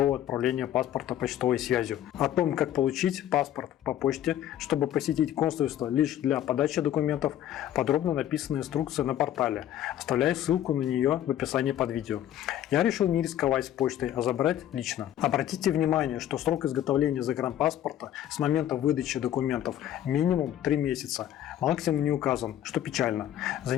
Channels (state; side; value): quieter; right; 11.7 dB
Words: отправления паспорта почтовой связью. О том, как получить паспорт по почте, чтобы посетить консульство лишь для подачи документов, подробно написана инструкция на портале. Оставляю ссылку на нее в описании под видео. Я решил не рисковать с почтой, а забрать лично. Обратите внимание, что срок изготовления загранпаспорта с момента выдачи документов минимум 3 месяца. Максимум не указан, что печально. За